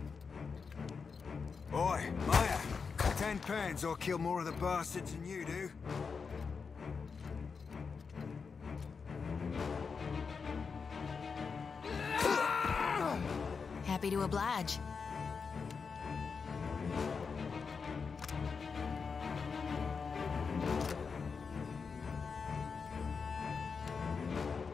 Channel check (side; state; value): right; quieter; 5.4 dB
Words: Oi, Maya. 10 pounds, I'll kill more of the bastards than you do. Happy to oblige.